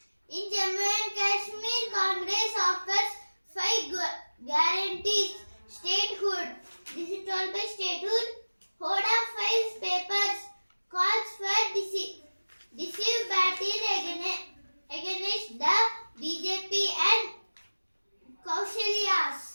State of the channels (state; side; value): inverted; both; correlation -1.00